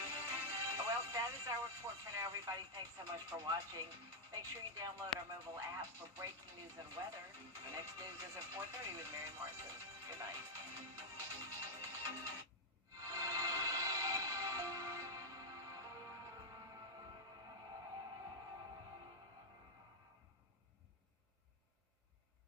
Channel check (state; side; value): normal; both; correlation -0.02